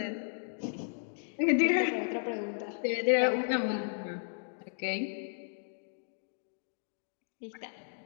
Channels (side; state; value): right; silent; digital silence